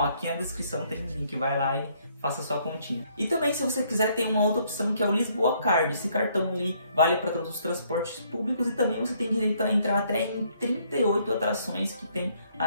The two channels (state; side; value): inverted; both; correlation -0.67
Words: aqui na descrição tem um link, vai lá e faça sua continha. E também, se você quiser, tem uma outra opção que é o Lisboa Card. Esse cartão ele vale para todos os transportes públicos e também você tem direito a entrar até em 38 atrações que tem